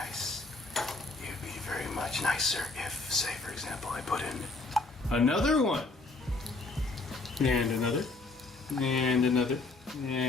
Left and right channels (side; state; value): right; quieter; 3.5 dB